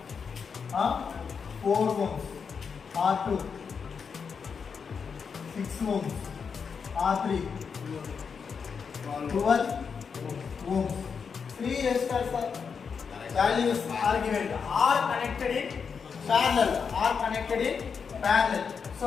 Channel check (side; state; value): right; quieter; 6.0 dB